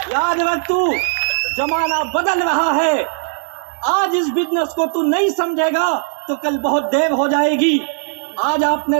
याद रख तू, जमाना बदल रहा है। आज इस बिजनेस को तू नहीं समझेगा तो कल बहुत देर हो जाएगी। आज आपने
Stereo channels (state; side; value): silent; left; digital silence